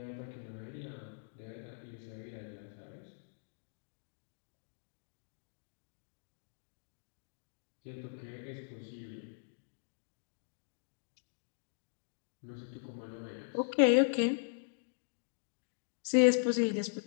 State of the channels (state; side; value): silent; right; digital silence